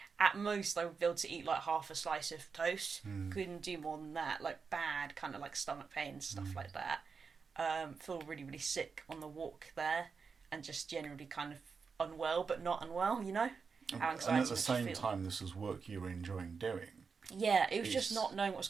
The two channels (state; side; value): quieter; left; 5.3 dB